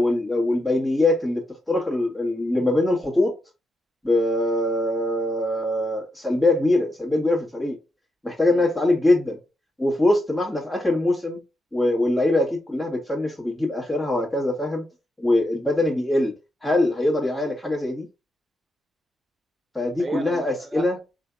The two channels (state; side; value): normal; both; correlation 0.84